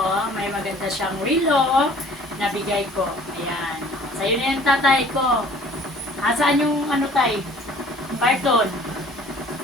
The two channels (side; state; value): both; normal; correlation 0.52